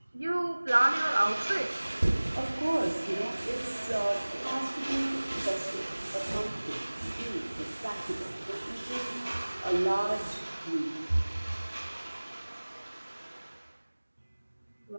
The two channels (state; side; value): inverted; both; correlation -1.00